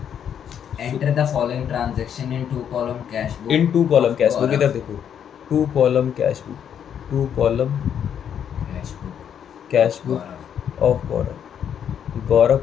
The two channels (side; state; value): right; quieter; 8.7 dB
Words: Enter the following transaction in two column cash book. In two column cash book, इधर देखो, two column cash book, two column cash book of Gaurav. Gaurav